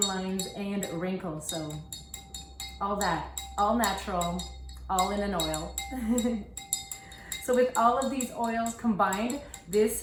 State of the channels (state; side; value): identical; both; correlation 1.00